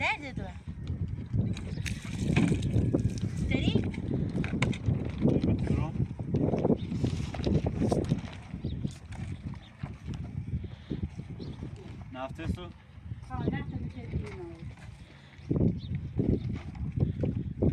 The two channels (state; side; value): identical; both; correlation 1.00